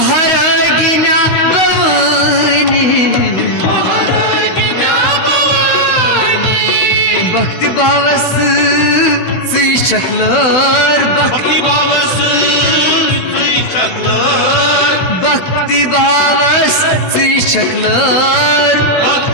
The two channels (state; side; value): late; right; 16 ms